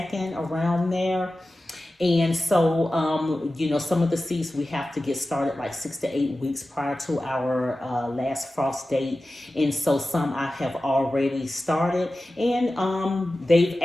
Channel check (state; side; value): normal; both; correlation 0.95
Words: around there. And so, some of the seeds we have to get started like 6 to 8 weeks prior to our last frost date. And so some I have already started, and they've